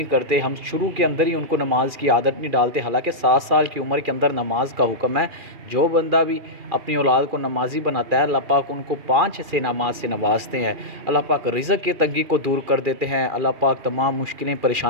करते, हम शुरू के अंदर ही उनको नमाज की आदत नहीं डालते। हालांकि 7 साल की उम्र के अंदर नमाज का हुक्म है। जो बंदा भी अपनी औलाद को नमाजी बनाता है, अल्लाह पाक उनको 5 से नमाज से नवाजते हैं। अल्लाह पाक रिज़्क़ की तंगी को दूर कर देते हैं, अल्लाह पाक तमाम मुश्किलें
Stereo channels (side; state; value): left; late; 2.4 ms